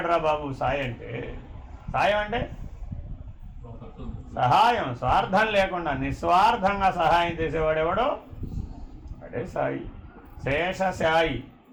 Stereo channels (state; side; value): identical; both; correlation 1.00